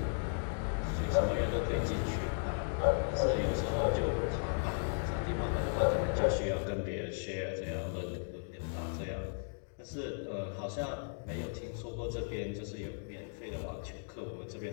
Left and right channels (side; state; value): right; silent; digital silence